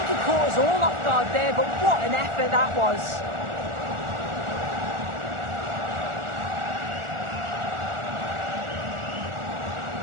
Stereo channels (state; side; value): late; left; 1.4 ms